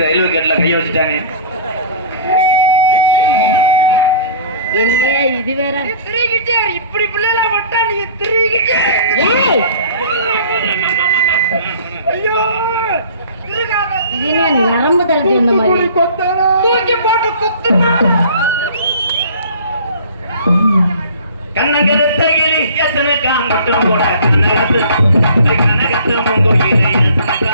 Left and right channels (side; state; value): both; inverted; correlation -0.45